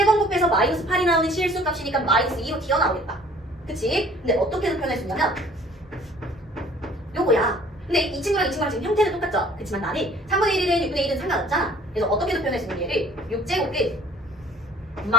번 곱해서 마이너스 8이 나오는 실수 값이니까 마이너스 2로 튀어나오겠다. 그치? 근데 어떻게 표현할 수 있냐면 요거야. 근데 이 친구랑 지금 형태는 똑같죠? 그치만 나는 3분의 1이든 6분의 1이든 상관없잖아. 그래서 어떻게도 표현할 수 있는 얘를 6제곱 끝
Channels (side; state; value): both; normal; correlation 0.52